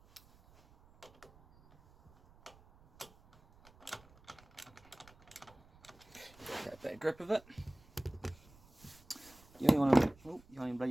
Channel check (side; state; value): right; noise; rumble, 26 dB below the sound